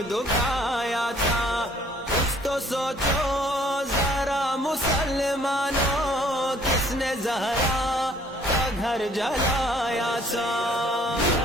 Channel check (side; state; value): both; normal; correlation 0.60